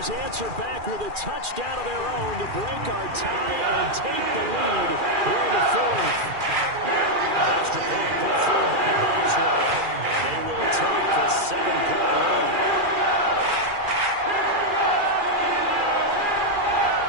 answer back with a touchdown of their own to break our tie and take the lead here in the 4th. Extra point put through by Boswell. And they will take a 7-point lead.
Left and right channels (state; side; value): late; left; 2.4 ms